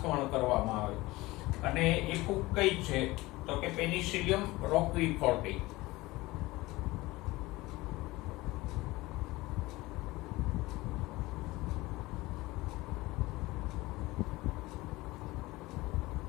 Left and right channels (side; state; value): right; quieter; 20.2 dB